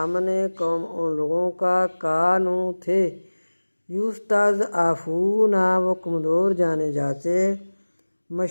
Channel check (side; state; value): both; inverted; correlation -1.00